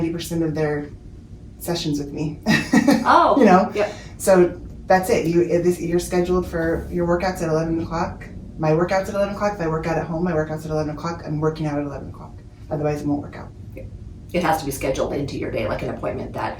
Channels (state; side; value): identical; both; correlation 1.00